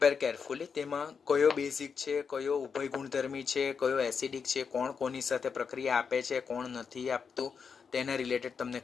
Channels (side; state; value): right; quieter; 6.0 dB